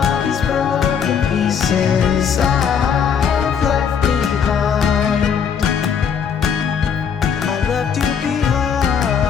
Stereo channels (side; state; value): right; quieter; 7.1 dB